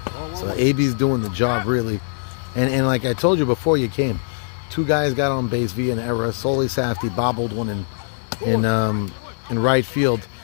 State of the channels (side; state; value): right; silent; 65 dB below the other